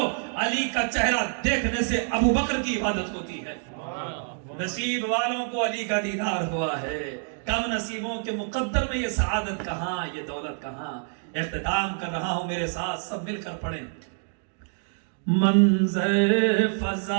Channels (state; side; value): silent; left; 59 dB below the other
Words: علی کا چہرہ دیکھنے سے ابو بکر کی عبادت ہوتی ہے۔ نصیب والوں کو علی کا دیدار ہوا ہے، کم نصیبوں کے مقدر میں یہ سعادت کہاں، یہ دولت کہاں۔ اختتام کر رہا ہوں، میرے ساتھ سب مل کر پڑھیں۔ منظر